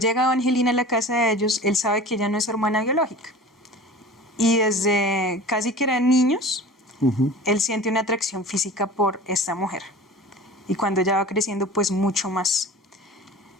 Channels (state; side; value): normal; both; correlation 0.38